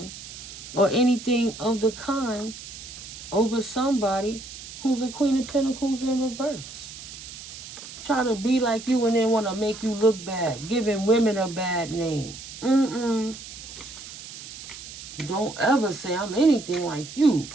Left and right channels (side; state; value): right; noise; hiss, 13 dB below the sound